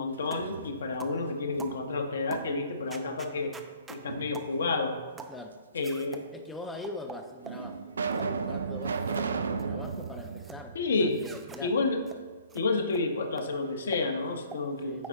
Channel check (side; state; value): both; inverted; correlation -0.58